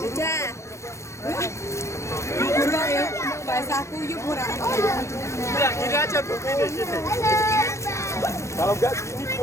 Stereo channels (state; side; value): late; right; 0.14 ms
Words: Murah ya, bahasa kuyup murah. Ya, gini aja Bu, gini. Kalau enggak gini